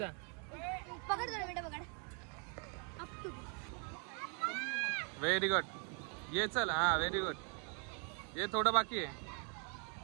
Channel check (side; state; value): left; quieter; 38.7 dB